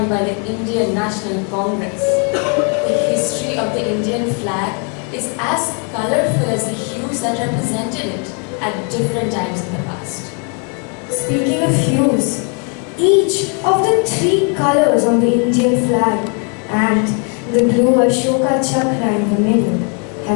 by the Indian National Congress. The history of the Indian flag is as colorful as the hues that represented it at different times in the past. Speaking of hues, each of the three colors on the Indian flag and the blue Ashoka chakra in the middle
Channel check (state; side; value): quieter; right; 38.5 dB